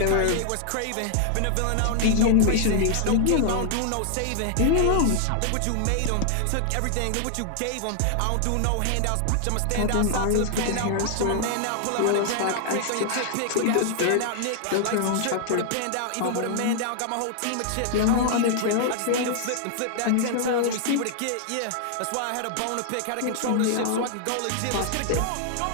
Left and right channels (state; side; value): different; both; correlation 0.00